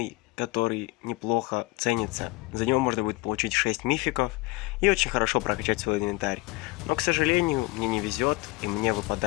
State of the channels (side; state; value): right; quieter; 22.3 dB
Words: который неплохо ценится. За него можно будет получить 6 мификов и очень хорошо прокачать свой инвентарь. Но, к сожалению, мне не везет, и мне